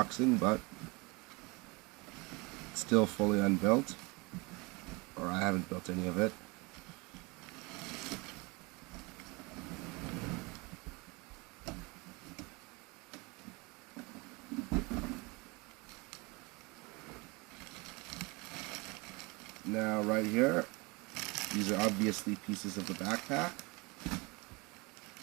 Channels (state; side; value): quieter; left; 26.6 dB